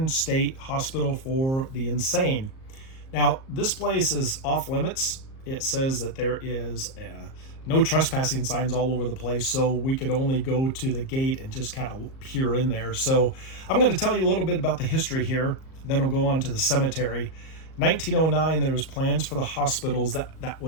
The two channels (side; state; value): right; late; 38 ms